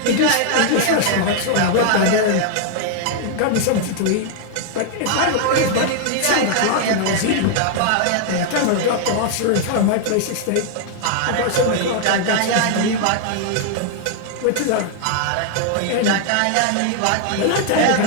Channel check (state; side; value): different; both; correlation 0.00